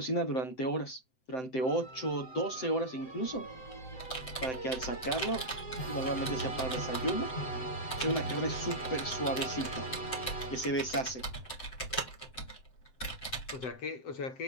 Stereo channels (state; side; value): late; right; 7.8 ms